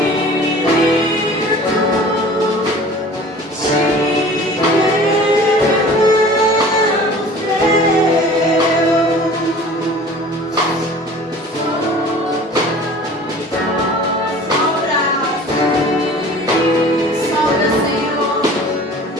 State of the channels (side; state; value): both; normal; correlation 0.45